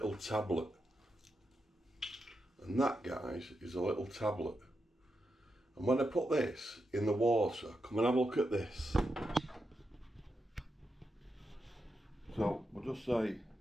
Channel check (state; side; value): normal; both; correlation 0.86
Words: tablet. And that, guys, is a little tablet. And when I put this in the water, come and have a look at this. So we'll just say